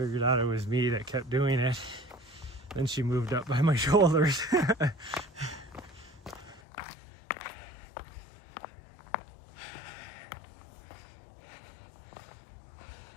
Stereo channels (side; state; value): right; drops out; at 6.6 s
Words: out it was me that kept doing it, then she moved up by my shoulders. The